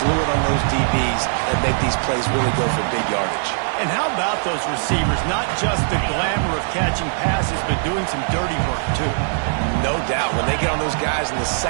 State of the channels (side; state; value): left; silent; digital silence